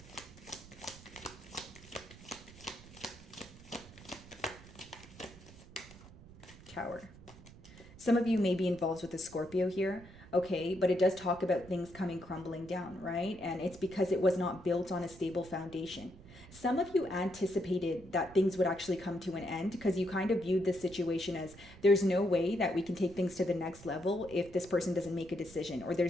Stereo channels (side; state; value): right; noise; rumble, 19 dB below the sound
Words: Tower. Some of you may be involved with a Scorpio here, okay, but it does talk about things coming crumbling down, right? And it's because it was not built on a stable foundation. Some of you anticipated that things would actually come to an end, because you kind of viewed this situation as, there's no way that we can take things to the next level if this person doesn't make a decision, or